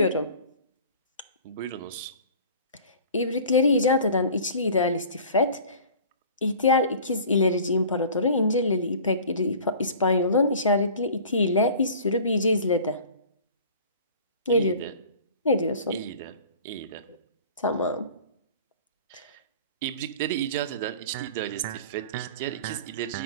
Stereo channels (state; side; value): inverted; both; correlation -0.43